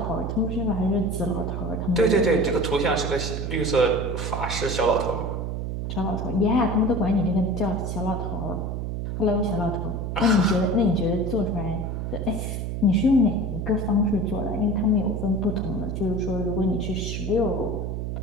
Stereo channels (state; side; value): noise; right; hum, 3 dB below the sound